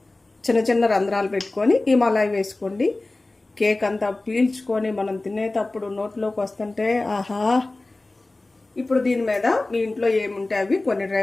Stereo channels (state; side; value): quieter; right; 3.0 dB